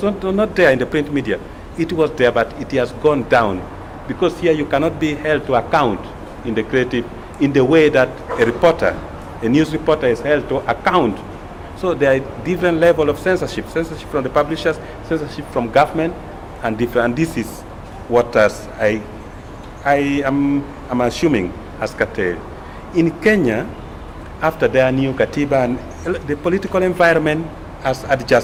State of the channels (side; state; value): both; identical; correlation 1.00